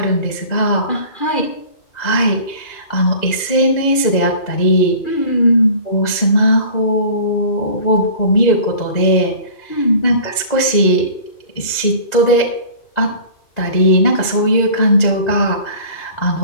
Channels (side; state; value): right; late; 2.0 ms